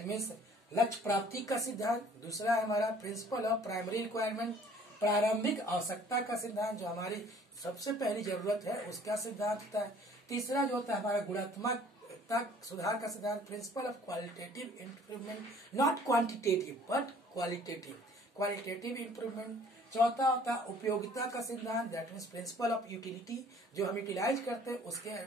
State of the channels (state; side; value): normal; both; correlation 0.54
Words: means लक्ष्य प्राप्ति का सिद्धांत। दूसरा है हमारा प्रिंसिपल ऑफ प्राइमरी रिक्वायरमेंट, प्रारंभिक आवश्यकता का सिद्धांत, जो हमारी सबसे पहली जरूरत है उसका सिद्धांत होता है। तीसरा जो होता है हमारा गुणात्मक सुधार का सिद्धांत, principle of qualitative improvement, not quantitative but qualitative improvement. चौथा होता है उपयोगिता का सिद्धांत, that means principle of utility, जो हम यूटिलाइज करते हैं उसके